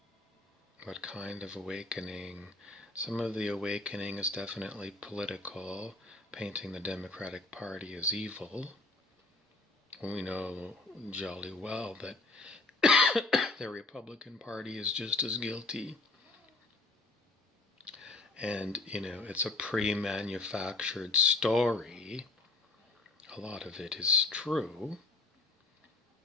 What kind of awakening? Some of the awakening is definitely political, painting the Democratic Party as evil. We know jolly well that the Republican Party is just as guilty. And, it's a pre-manufactured story. A lot of it is true.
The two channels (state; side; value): quieter; right; 3.2 dB